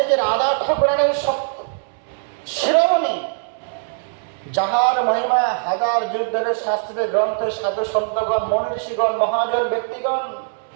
যে রাধা ঠাকুরানের শিরোমণি, যাহার মহিমা হাজার যুগ ধরে শাস্ত্রের গ্রন্থে সাধু সন্তগণ, মনীষীগণ, মহাজন ব্যক্তিগণ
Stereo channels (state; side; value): silent; left; 65 dB below the other